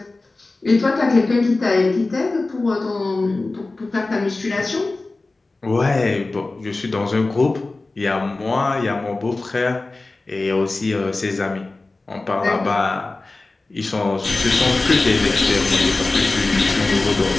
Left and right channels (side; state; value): right; quieter; 3.3 dB